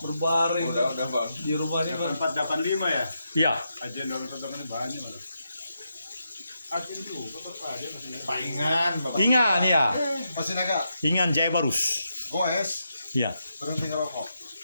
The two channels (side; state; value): both; inverted; correlation -0.83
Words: berbaring Udah Bang. di rumahnya kan 485 ya. Iya. Ajen 485 banyak malah. Ajen juga Pak Ajen masih. Paingan, Bapak. Ingan ya. Masih naga. Ingan Jaya Barus. Goes Iya. berhenti ngerokok.